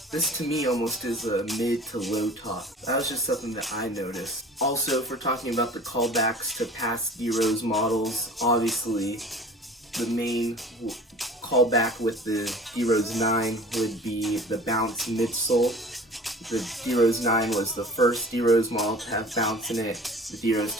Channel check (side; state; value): both; normal; correlation 0.43